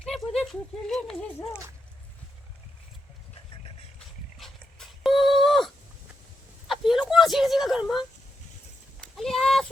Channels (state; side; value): normal; both; correlation 0.84